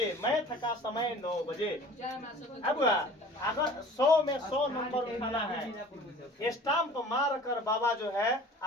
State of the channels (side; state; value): both; normal; correlation 0.45